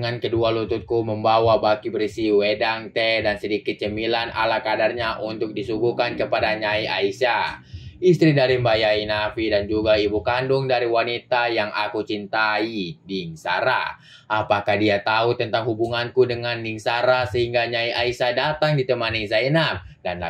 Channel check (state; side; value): identical; both; correlation 1.00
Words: kedua lututku membawa baki berisi wedang, teh, dan sedikit cemilan ala kadarnya untuk disuguhkan kepada Nyai Aisyah, istri dari Mbak Yai Nafi dan juga ibu kandung dari wanita yang aku cintai, Ning Sara. Apakah dia tahu tentang hubunganku dengan Ning Sara sehingga Nyai Aisyah datang ditemani Zainab dan